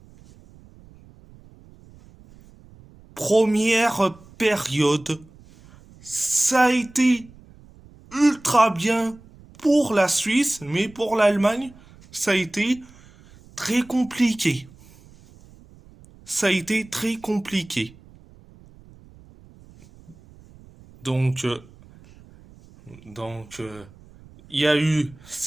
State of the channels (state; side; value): noise; right; rumble, 24 dB below the sound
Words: Première période, ça a été ultra bien pour la Suisse, mais pour l'Allemagne, ça a été très compliqué. Ça a été très compliqué. Donc, il y a eu